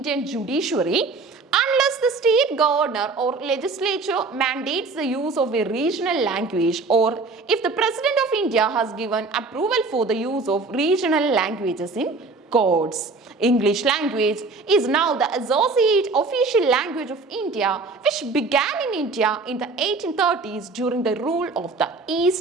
judiciary unless the state governor or legislature mandates the use of a regional language, or if the President of India has given approval for the use of regional languages in courts. English language is now the associate official language of India, which began in India in the 1830s during the rule of the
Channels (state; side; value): quieter; left; 3.9 dB